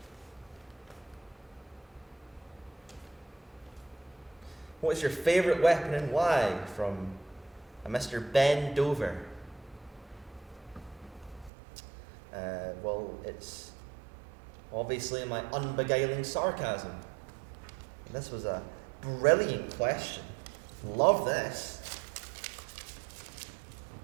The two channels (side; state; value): left; drops out; at 11.5 s